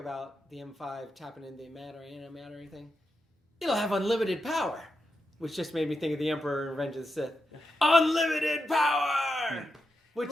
the M5 tapping into antimatter thing. It'll have unlimited power. which just made me think of the Emperor in Revenge of the Sith. Unlimited power! Which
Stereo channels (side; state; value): both; normal; correlation 0.87